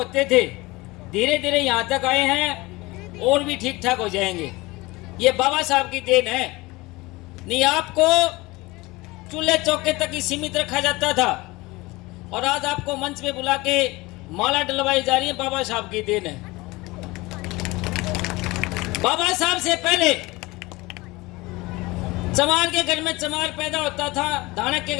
थे, धीरे धीरे यहां तक आए हैं और भी ठीक ठाक हो जाएंगे। ये बाबा साहब की देन है। नहीं आपको चूल्हे चौके तक ही सीमित रखा जाता था और आज आपको मंच पे बुला के माला डलवाई जा रही है, बाबा साहब की देन है। बाबा साहब से पहले चमार के घर में चमार पैदा होता था, धानक के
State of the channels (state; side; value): quieter; right; 21.9 dB